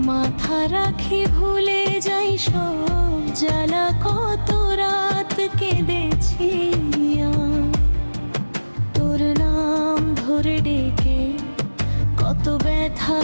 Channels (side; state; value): both; inverted; correlation -1.00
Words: মাথা রাখি ভুলে যাই সব জ্বালা, কত রাত কেঁদেছি তোর নাম ধরে ডেকে, কত ব্যথা